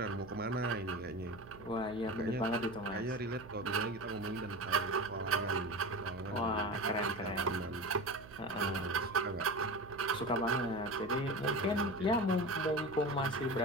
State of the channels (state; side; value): noise; right; hum, 18 dB below the sound